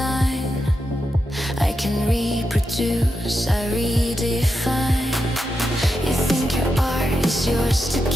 I can reproduce, I redefine. You think your art is yours to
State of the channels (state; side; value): normal; both; correlation 0.87